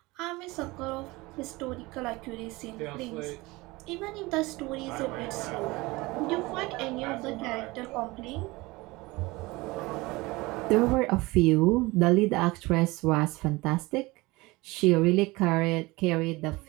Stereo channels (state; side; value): quieter; left; 22.1 dB